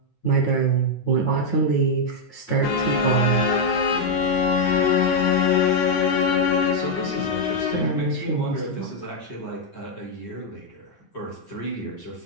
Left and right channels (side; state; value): right; late; 9.4 ms